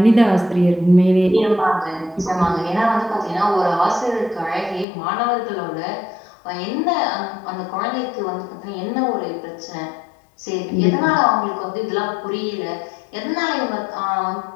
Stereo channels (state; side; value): drops out; right; at 4.9 s